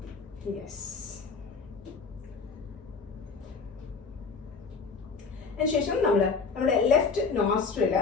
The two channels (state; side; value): quieter; right; 4.9 dB